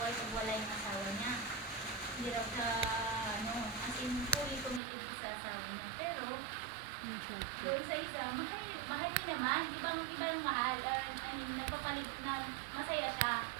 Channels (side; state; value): left; drops out; at 4.8 s